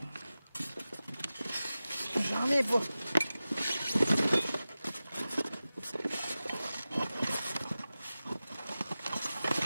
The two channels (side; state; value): both; inverted; correlation -0.95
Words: J'en ai pas.